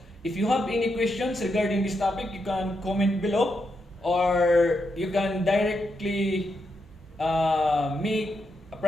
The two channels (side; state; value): both; normal; correlation 0.83